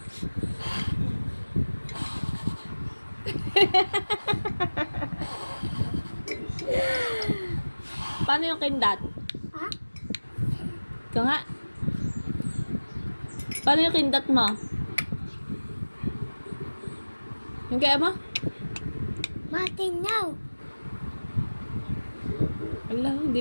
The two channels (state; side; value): inverted; both; correlation -1.00